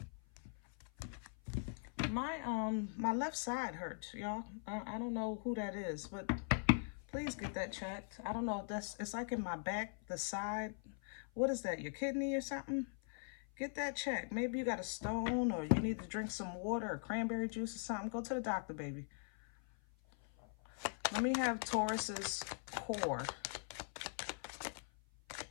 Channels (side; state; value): right; silent; 50 dB below the other